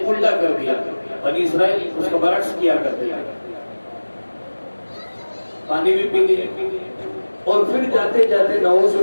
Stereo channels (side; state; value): both; inverted; correlation -1.00